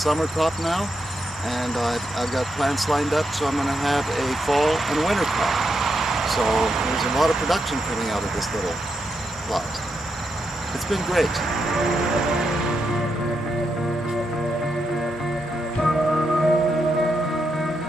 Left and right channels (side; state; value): both; normal; correlation 0.83